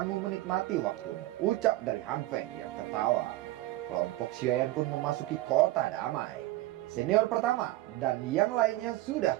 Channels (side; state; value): left; quieter; 16.8 dB